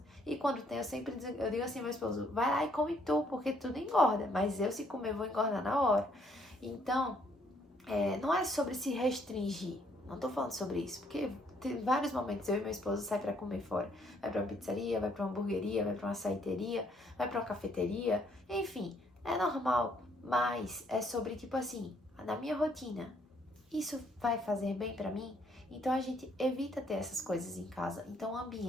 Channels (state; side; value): normal; both; correlation 0.68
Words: E quando tem, eu digo assim ao meu esposo, vai lá e come tu, porque tudo engorda. Mas eu, se comer, vou engordar na hora. Então, não é sobre se restringir. Não tô falando sobre isso, porque tem vários momentos eu e meu esposo sai pra comer fora. Vai pra uma pizzaria, vai pra uma hamburgueria, vai pra uma açaiteria, vai pra uma cafeteria. Enfim, é normal, mas é sobre, tipo assim, na minha rotina, isso vai fazer bem pra mim? Então a gente evita ter essas coisas em casa. Então o